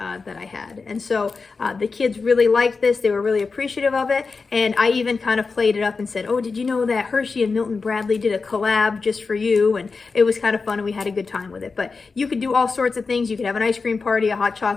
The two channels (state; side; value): quieter; right; 4.5 dB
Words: I had. And so the kids really liked this. They were really appreciative of it. And I even kind of played it up and said, oh, did you know that Hershey and Milton Bradley did a collab just for you? And it was kind of fun, and we had a good time with it. But you could do all sorts of things. You could have an ice cream party, a hot